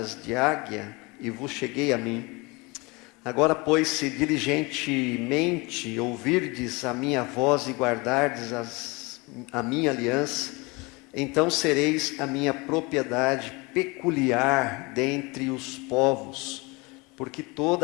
de águia e vos cheguei a mim. Agora, pois, se diligentemente ouvirdes a minha voz e guardardes a minha aliança, então sereis a minha propriedade peculiar dentre os povos, porque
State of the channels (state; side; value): quieter; right; 26.1 dB